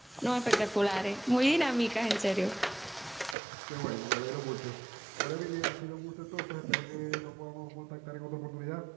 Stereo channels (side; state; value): left; drops out; at 3.4 s